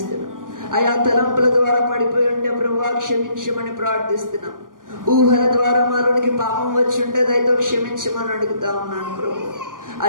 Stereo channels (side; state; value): left; late; 0.90 ms